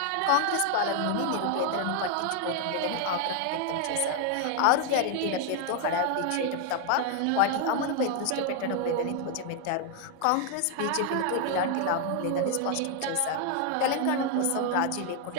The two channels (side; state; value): both; different; correlation 0.00